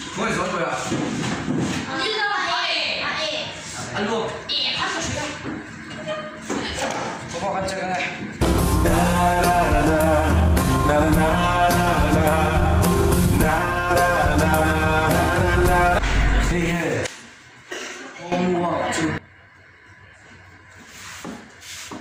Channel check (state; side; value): identical; both; correlation 1.00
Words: Ngồi xuống rồi à? Ăn luôn. Có vào ăn chơi cái này. Hey, hey. Mua chứ.